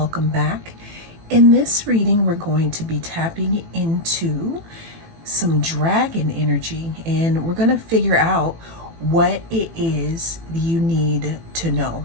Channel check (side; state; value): left; late; 18 ms